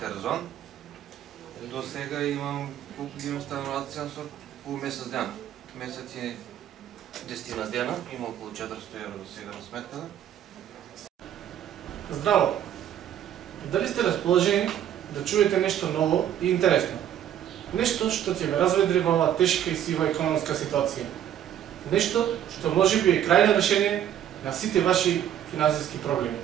До сега имам колку ги имам стануваци со по месец ден. Месец е 10 дена, има околу 400 евро до сега на сметката. Здраво! Дали сте расположени да чуете нешто ново и интересно? Нешто што ќе ве разведри во оваа тешка и сива економска ситуација. Нешто што можеби е крајно решение на сите ваши финансиски проблеми.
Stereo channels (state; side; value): quieter; left; 10.6 dB